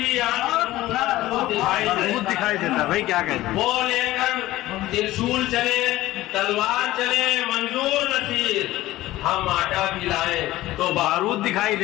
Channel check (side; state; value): right; quieter; 16.4 dB